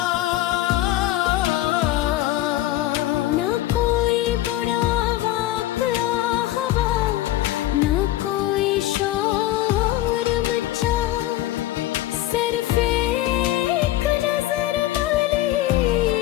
ना कोई बुरा वाक़या हुआ, ना कोई शोर मचा, सिर्फ एक नजर वाली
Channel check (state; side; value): quieter; right; 15.1 dB